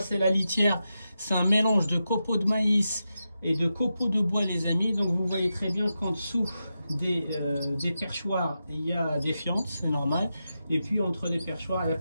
c'est la litière, c'est un mélange de copeaux de maïs et de copeaux de bois, les amis. Donc vous voyez très bien qu'en dessous des perchoirs il y a des fientes, c'est normal, et puis entre les perchoirs il n'y a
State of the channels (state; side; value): inverted; both; correlation -0.89